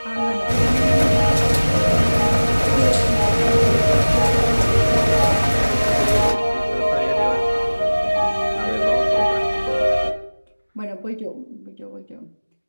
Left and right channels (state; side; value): inverted; both; correlation -1.00